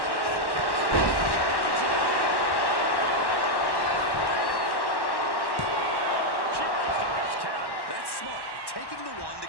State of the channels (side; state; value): right; late; 1.1 ms